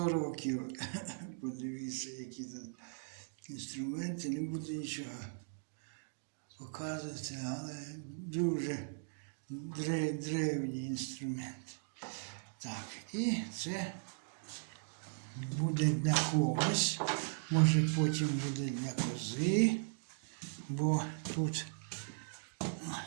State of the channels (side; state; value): left; silent; digital silence